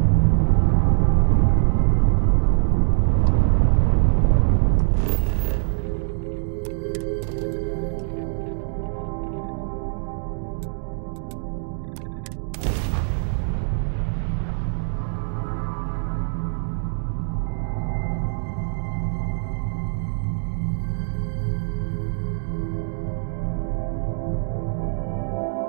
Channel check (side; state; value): left; silent; digital silence